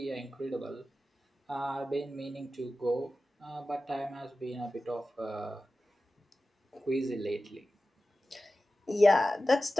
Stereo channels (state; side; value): normal; both; correlation 0.94